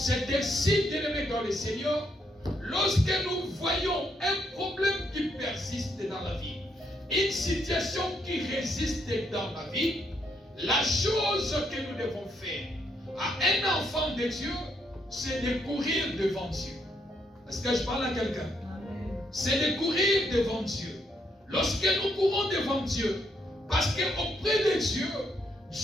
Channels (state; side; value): normal; both; correlation 0.75